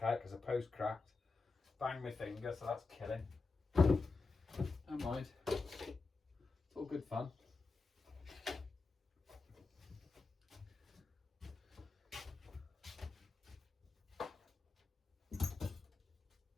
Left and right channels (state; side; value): quieter; right; 4.0 dB